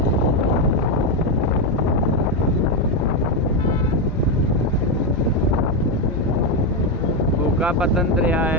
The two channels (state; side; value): normal; both; correlation 0.07